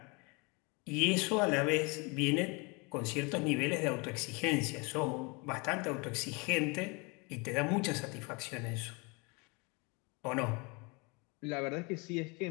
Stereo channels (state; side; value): quieter; right; 29.1 dB